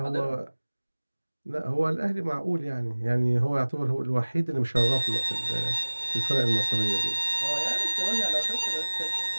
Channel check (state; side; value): inverted; both; correlation -1.00